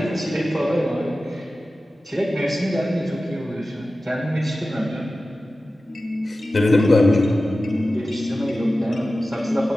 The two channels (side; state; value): both; normal; correlation 0.95